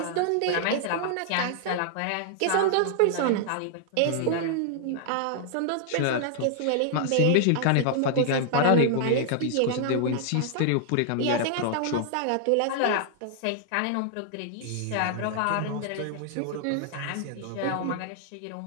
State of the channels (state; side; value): different; both; correlation -0.01